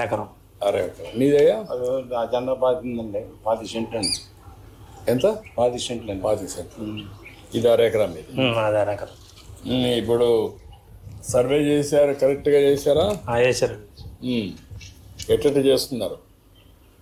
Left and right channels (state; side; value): identical; both; correlation 1.00